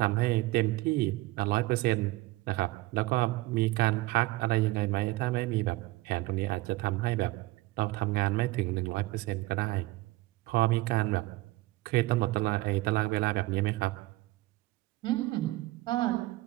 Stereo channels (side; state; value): left; quieter; 19.8 dB